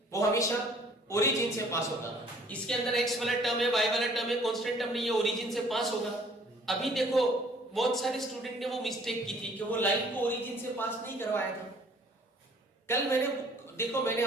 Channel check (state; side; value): normal; both; correlation 0.57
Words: वो हमेशा ओरिजिन से पास होगा। इसके अंदर x वाला टर्म है, y वाला टर्म है, कांस्टेंट टर्म नहीं है, ओरिजिन से पास होगा। अभी देखो बहुत सारे स्टूडेंट ने वो मिस्टेक की थी कि वो लाइन को ओरिजिन से पास नहीं करवाया था। कल मैंने